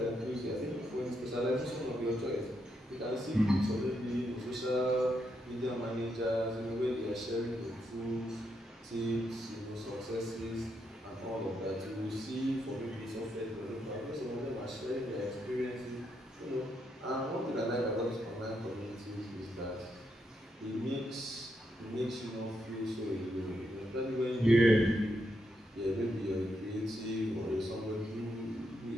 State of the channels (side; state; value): both; normal; correlation 0.80